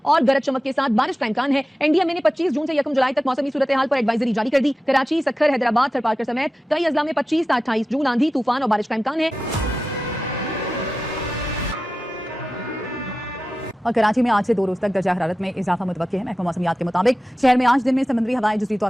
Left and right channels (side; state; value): both; normal; correlation 0.94